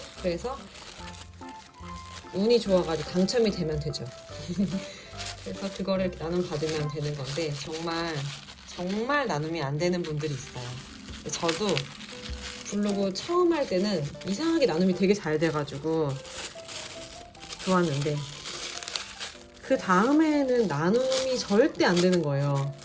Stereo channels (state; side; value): identical; both; correlation 1.00